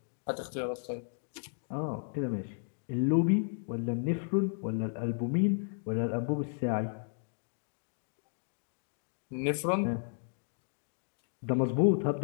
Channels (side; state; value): right; silent; 55 dB below the other